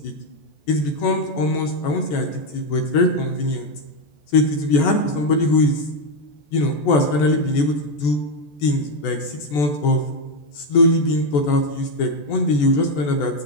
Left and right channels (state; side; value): late; right; 14 ms